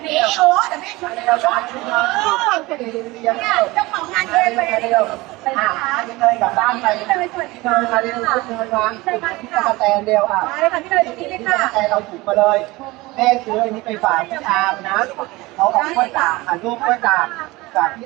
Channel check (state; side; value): quieter; left; 21.3 dB